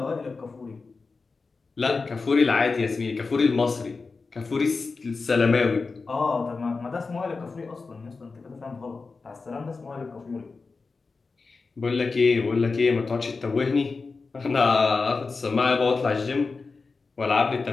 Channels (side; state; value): right; quieter; 4.2 dB